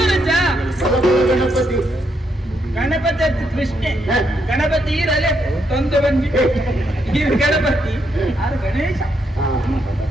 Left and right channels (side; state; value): both; normal; correlation 0.78